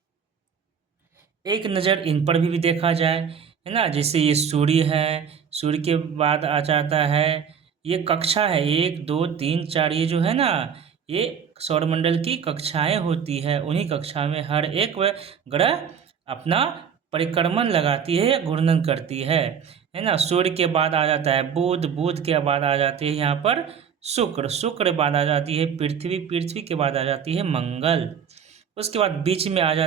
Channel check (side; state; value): left; quieter; 7.3 dB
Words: एक नज़र इन पर भी देखा जाए, है ना, जैसे ये सूर्य है, सूर्य के बाद आ जाता है ये कक्षा है 1 2 3 4, ये जो है ना, ये सौरमंडल की कक्षाएं होती है। उन्हीं कक्षा में हर एक ग्रह अपना परिक्रमण लगाती है या घूर्णन करती है ना। सूर्य के बाद आ जाता है बुध, बुध के बाद आ जाती है यहाँ पर शुक्र, शुक्र बाद आ जाती है पृथ्वी, पृथ्वी के बाद आ जाती है मंगल। उसके बाद बीच में आ